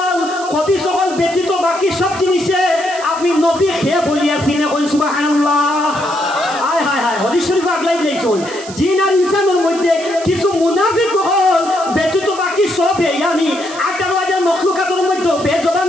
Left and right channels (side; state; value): right; noise; hiss, 15 dB below the sound